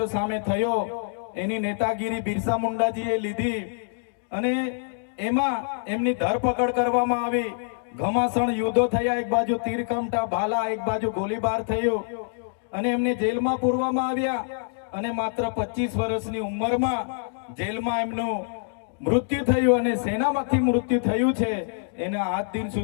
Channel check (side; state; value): right; silent; digital silence